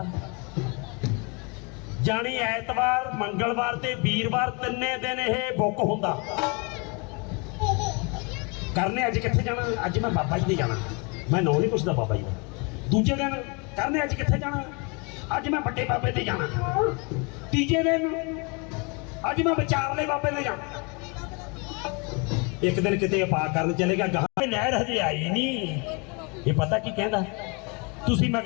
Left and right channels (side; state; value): right; quieter; 31.8 dB